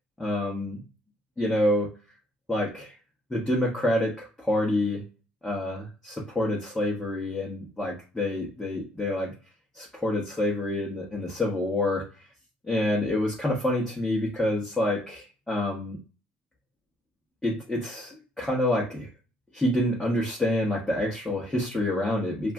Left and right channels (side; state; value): both; normal; correlation 0.67